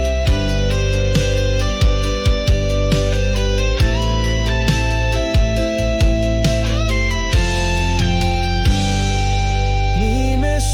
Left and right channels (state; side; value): identical; both; correlation 1.00